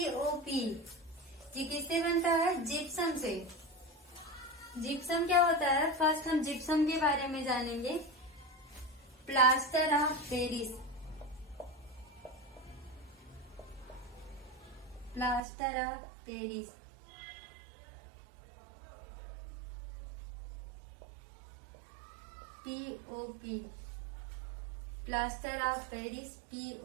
ये किससे बनता है? जिप्सम से। जिप्सम क्या होता है? फर्स्ट हम जिप्सम के बारे में जानेंगे। Plaster of Paris, POP, plaster of Paris,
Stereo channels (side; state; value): left; drops out; at 15.4 s